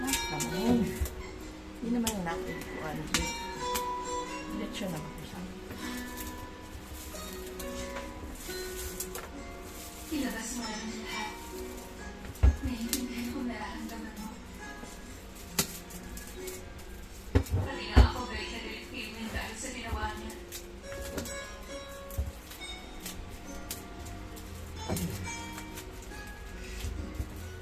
Naman. Hindi naman yung natin ko. Lechon naman ko sa amin. Ilabas mo na rin lahat. Naiintindihan kong nararamdaman mo. Pati nga ako galit na galit kay Win dahil sa ginawa niya.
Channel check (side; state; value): both; identical; correlation 1.00